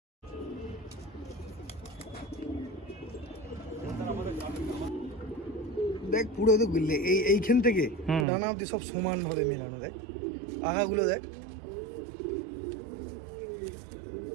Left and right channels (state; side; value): drops out; left; at 8.2 s